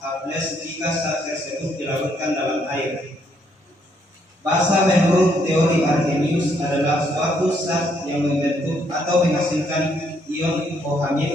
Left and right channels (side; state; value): both; normal; correlation 0.71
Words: H+ jika zat tersebut dilarutkan dalam air. Basa menurut teori Arrhenius adalah suatu zat yang membentuk atau menghasilkan ion OH-